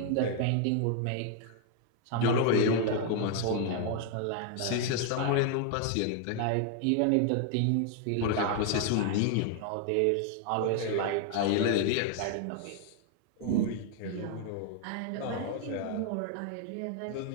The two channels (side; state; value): both; different; correlation 0.00